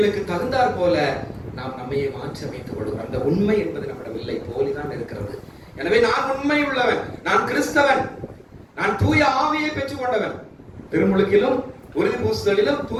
தகுந்தாற் போல நாம் நம்மையை மாற்றி அமைத்துக் கொள்கிறோம். அந்த உண்மை என்பது நம்மிடம் இல்லை, போலிதான் இருக்கிறது. எனவே நான் உண்மை உள்ளவன், நான் கிறிஸ்தவன், நான் தூய ஆவியை பெற்றுக் கொண்டவன். திருமுழுக்கிலும் உறுதி பூசுதலிலும்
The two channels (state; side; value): identical; both; correlation 1.00